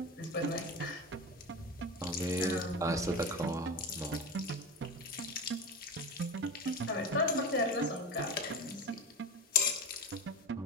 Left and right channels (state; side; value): normal; both; correlation 0.26